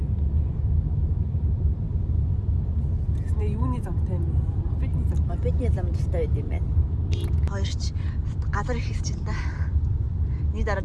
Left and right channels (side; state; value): both; identical; correlation 1.00